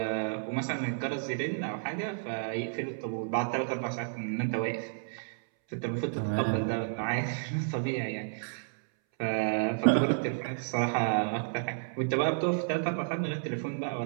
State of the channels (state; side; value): silent; left; 57 dB below the other